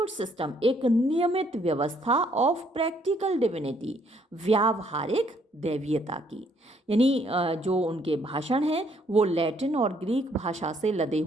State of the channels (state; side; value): normal; both; correlation 0.67